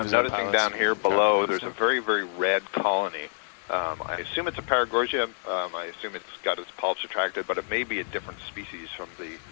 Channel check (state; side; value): silent; right; digital silence